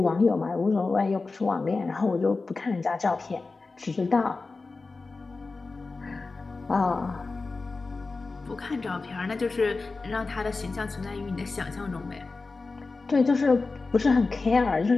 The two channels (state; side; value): quieter; right; 3.8 dB